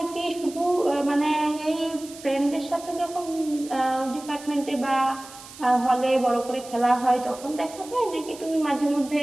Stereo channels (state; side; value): noise; right; hiss, 17 dB below the sound